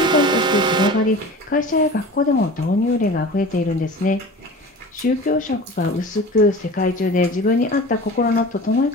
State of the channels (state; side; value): normal; both; correlation 0.37